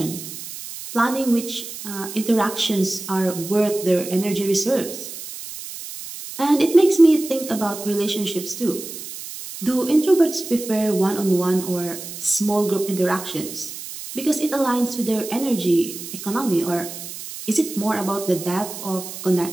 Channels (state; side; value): noise; right; hiss, 11 dB below the sound